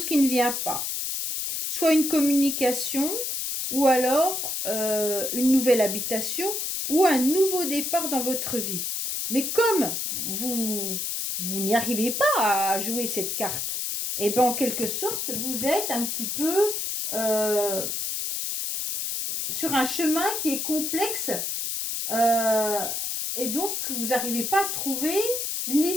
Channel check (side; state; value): left; noise; hiss, 2 dB below the sound